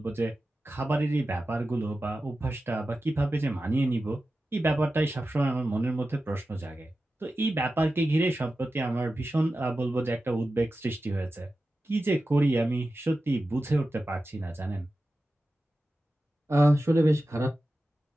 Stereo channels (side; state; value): both; normal; correlation 0.93